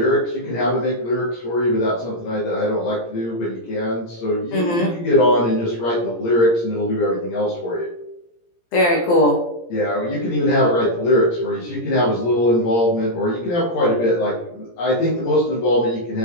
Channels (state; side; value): late; right; 17 ms